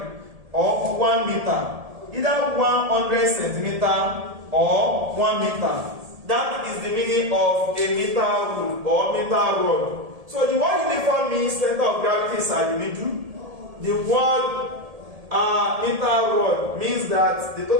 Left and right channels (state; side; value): late; left; 1.7 ms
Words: or 1 meter. Either 100 centimeter or 1 meter. That is the meaning of a meter rule or meter rod. So the word uniform means center of gravity is at the middle. The word meter rod means that the